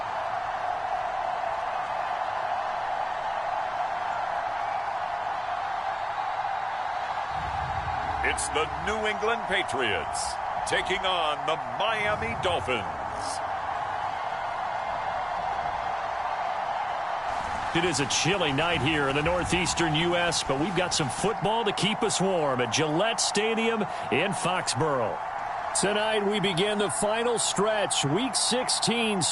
It's the New England Patriots taking on the Miami Dolphins. It is a chilly night here in the northeastern U.S., but we've got some football to keep us warm at Gillette Stadium in Foxborough. Tonight we begin the final stretch. Week 16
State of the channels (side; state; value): both; identical; correlation 1.00